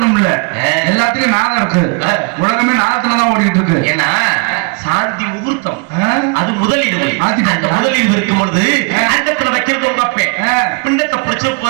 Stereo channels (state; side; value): quieter; left; 33.3 dB